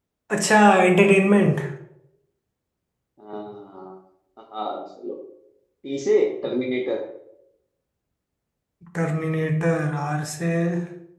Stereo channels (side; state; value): both; identical; correlation 1.00